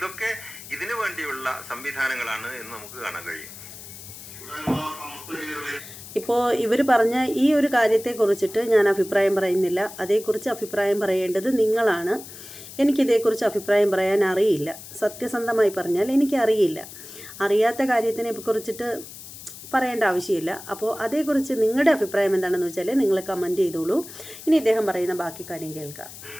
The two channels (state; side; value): noise; left; hiss, 15 dB below the sound